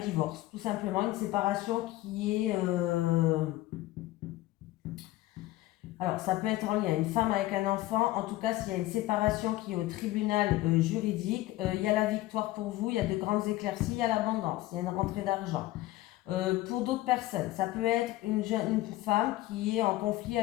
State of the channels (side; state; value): right; quieter; 16.9 dB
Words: divorce, tout simplement. Une séparation qui est... Alors, ça peut être en lien une femme avec un enfant. En tout cas, s'il y a une séparation qui est au tribunal juridique, il y a la victoire pour vous, il y a de grandes éclaircies, il y a l'abondance, il y a une rentrée d'argent. Pour d'autres personnes, ça peut être une femme qui est en conflit